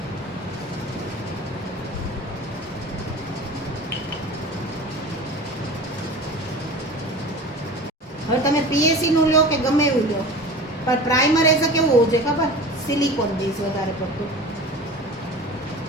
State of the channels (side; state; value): both; normal; correlation 0.36